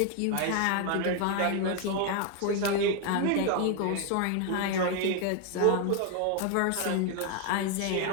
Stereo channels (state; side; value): different; both; correlation 0.01